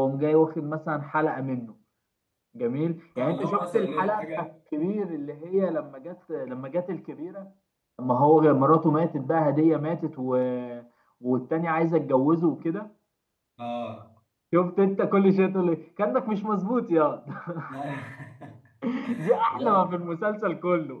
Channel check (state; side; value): identical; both; correlation 1.00